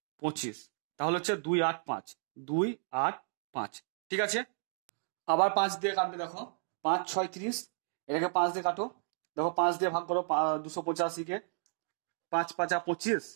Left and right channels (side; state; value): left; silent; digital silence